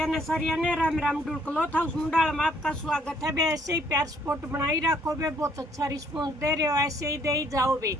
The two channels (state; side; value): normal; both; correlation 0.65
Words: ने सारिया ने राम राम ढुलकलो था उस मुंडाल में आपका स्वागत है बे। ऐसे ही प्यार सपोर्ट बनाई रखो बे, बहुत अच्छा रिस्पॉन्स दे रहे हो, ऐसे ही दे ही जाओ बे।